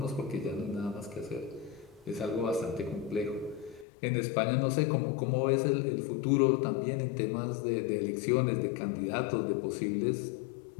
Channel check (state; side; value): drops out; right; at 3.9 s